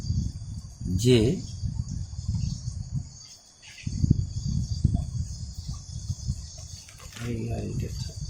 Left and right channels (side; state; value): both; identical; correlation 1.00